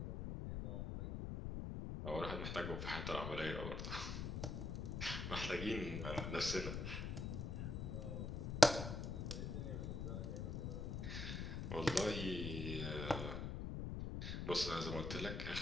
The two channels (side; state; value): left; noise; rumble, 2 dB below the sound